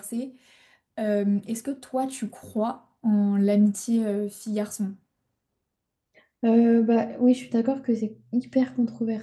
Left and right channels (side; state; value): both; identical; correlation 1.00